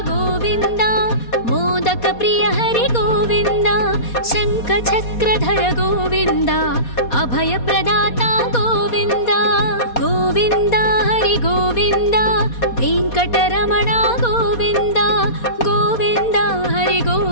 गोविन्द मोदक प्रिय हरि गोविन्द शङ्खचक्रधर गोविन्द अभय प्रदाता गोविन्द गोविन्द हरि गोविन्द वेङ्कटरमण गोविन्द गोविन्द हरि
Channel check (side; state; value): right; late; 4.2 ms